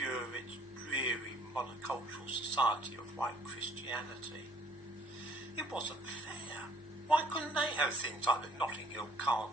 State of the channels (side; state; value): both; normal; correlation 0.59